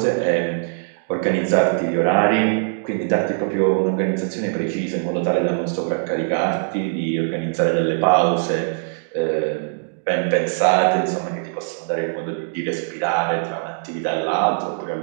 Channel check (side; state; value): left; silent; digital silence